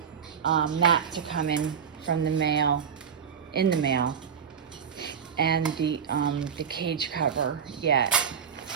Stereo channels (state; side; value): quieter; left; 7.2 dB